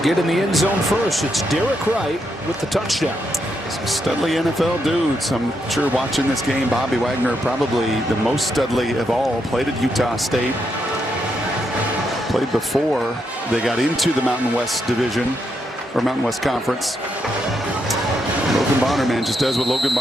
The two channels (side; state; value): both; normal; correlation 0.80